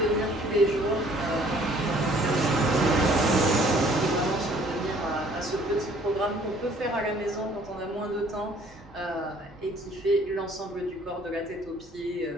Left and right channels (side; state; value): both; normal; correlation 0.57